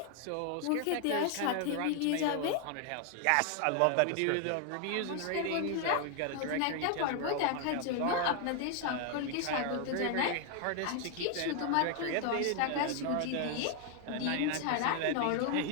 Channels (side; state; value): both; different; correlation 0.00